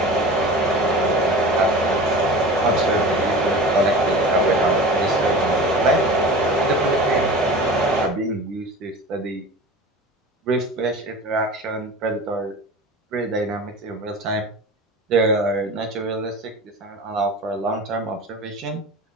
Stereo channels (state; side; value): normal; both; correlation 0.35